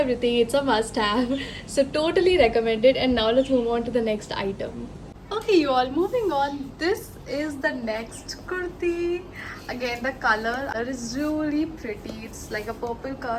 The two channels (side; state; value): both; identical; correlation 1.00